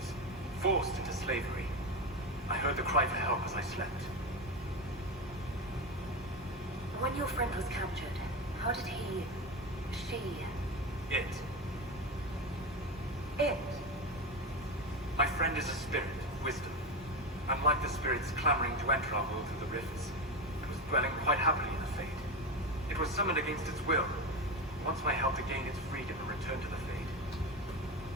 forced into slavery. I heard the cry for help as I slept. When your friend was captured, how did she... It? My friend is a spirit, wisdom. Unlike the spirits clamoring to enter our world through the rifts, it was dwelling quite happily in the Fade. It was summoned against its will. Wants my help to gain its freedom and return to the Fade.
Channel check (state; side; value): normal; both; correlation 0.18